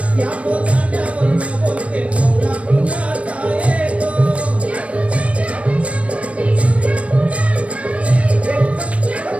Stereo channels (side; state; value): left; late; 0.063 ms